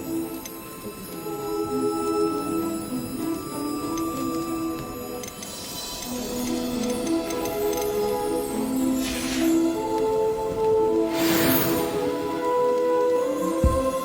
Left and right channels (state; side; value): identical; both; correlation 1.00